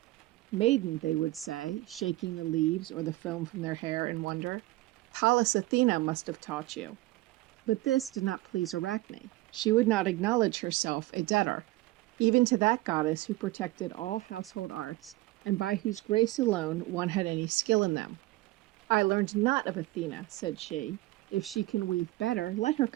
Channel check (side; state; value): left; quieter; 19.0 dB